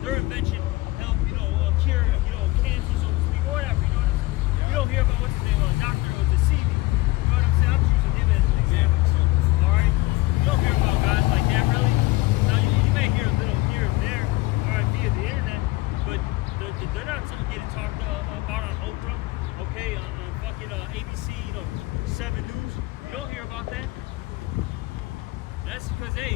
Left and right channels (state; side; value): quieter; right; 19.6 dB